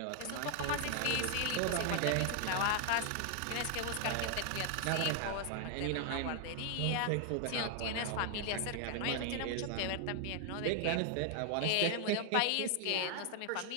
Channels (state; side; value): different; both; correlation 0.00